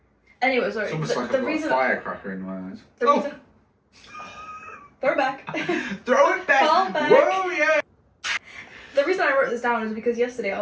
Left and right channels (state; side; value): identical; both; correlation 1.00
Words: Anyway, sorry. It's almost like I've got a firecracker in my eyes. Reason... Throw it back. Throw it back. Fall back. Whoa, yeah. The reason I wrote this down is because yesterday I